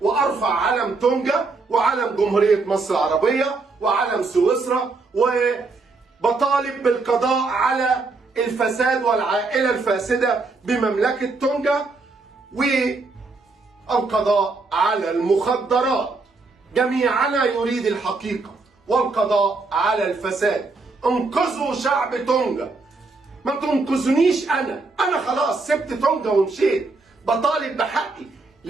وأرفع علم تونجا وعلم جمهورية مصر العربية وعلم سويسرا، وبطالب بالقضاء على الفساد والعائلة الفاسدة بمملكة تونجا، والقضاء على المخدرات. جميعنا يريد الحقيقة والقضاء على الفساد. انقذوا شعب تونجا، ما تنقذنيش أنا خلاص سبت تونجا ومشيت، بطالب بحقي.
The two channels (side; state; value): left; quieter; 3.8 dB